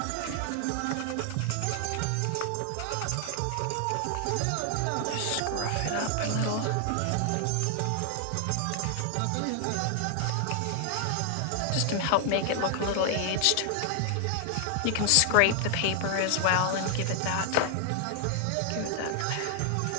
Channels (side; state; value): both; different; correlation 0.00